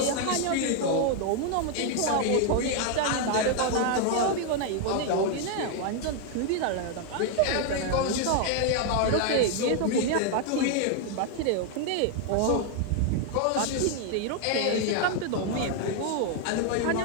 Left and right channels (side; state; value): both; different; correlation 0.00